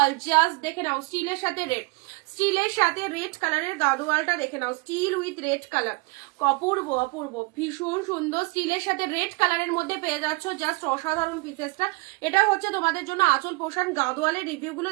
জাস্ট দেখে নাও, স্টিলের সাথে রেড, স্টিলের সাথে রেড কালারের গাদোয়ালটা দেখে নাও, স্টিল উইথ রেড কালার, অপূর্ব অপূর্ব, ভীষণ সুন্দর। স্টিলের সাথে রেড কালারের মধ্যে পেয়ে যাচ্ছ, জাস্ট অসাধারণ পিসেসটা। এটা হচ্ছে তোমাদের জন্য আঁচল পোষণ। গাদোয়ালের রিভিউ গুলো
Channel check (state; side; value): quieter; left; 27.3 dB